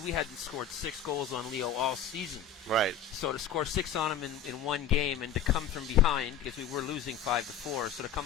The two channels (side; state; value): right; quieter; 7.4 dB